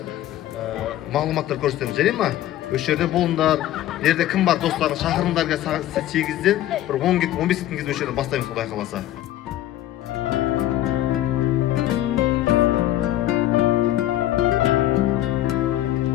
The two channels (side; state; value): right; quieter; 13.6 dB